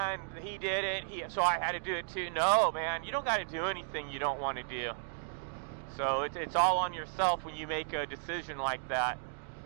he did it, so I had to do it too. No, man, you don't got to do anything you don't want to do. So it's all on yourself when you make a decision like that.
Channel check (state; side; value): silent; left; digital silence